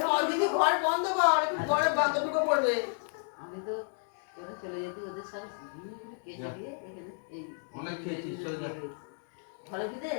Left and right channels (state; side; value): silent; right; 56 dB below the other